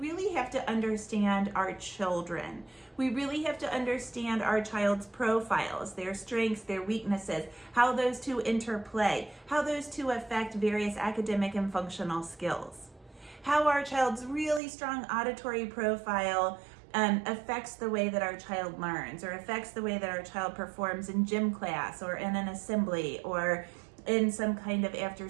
have to understand our children. We really have to understand our child's profiles, their strengths, their weaknesses, how those two interplay, how those two affect various academic and functional skills, how our child's really strong auditory profile affects the way that our child learns, or affects the way that our child performs in gym class or in an assembly or in some kind of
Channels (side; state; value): left; drops out; at 14.6 s